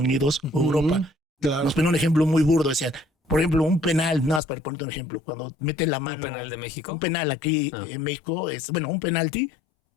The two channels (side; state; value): right; drops out; at 4.4 s